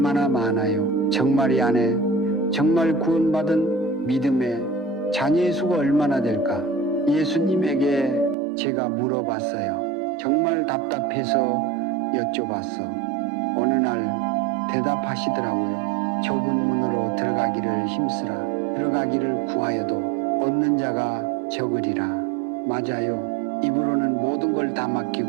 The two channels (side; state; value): left; drops out; at 8.3 s